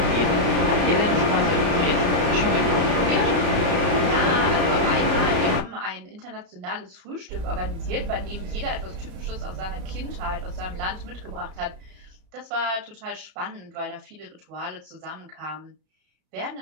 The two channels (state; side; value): late; left; 34 ms